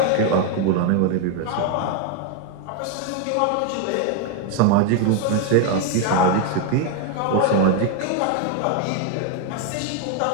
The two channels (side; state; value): both; different; correlation 0.01